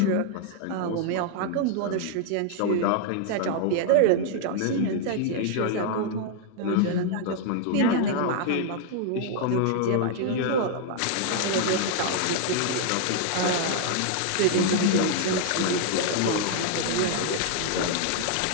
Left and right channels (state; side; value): different; both; correlation 0.00